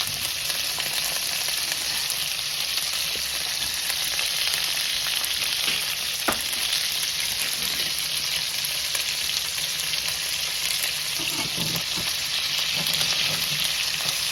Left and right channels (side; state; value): both; identical; correlation 1.00